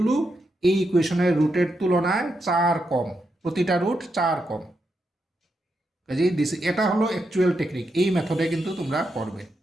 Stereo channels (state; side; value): normal; both; correlation 0.84